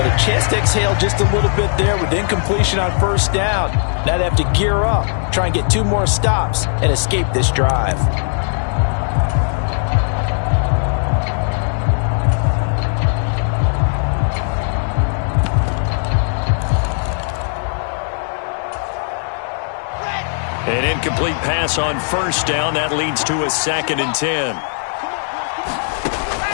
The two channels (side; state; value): right; silent; 67 dB below the other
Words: a chance to exhale just a little bit there with incompletion on 1st down. Now they have to gear up, try and get 2 more stops, and escape this drive. An incomplete pass on 1st down. That leads to a 2nd and 10.